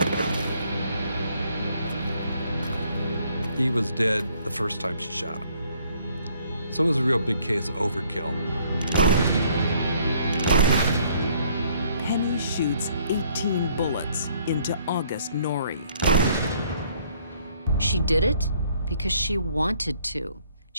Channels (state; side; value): inverted; both; correlation -0.64